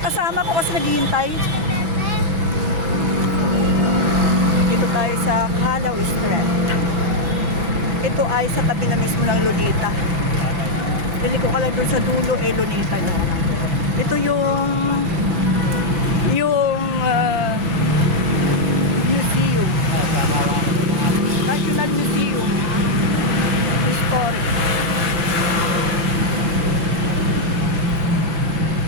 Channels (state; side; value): late; left; 5.1 ms